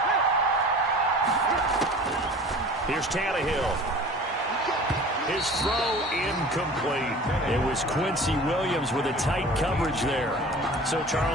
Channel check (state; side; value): normal; both; correlation 0.42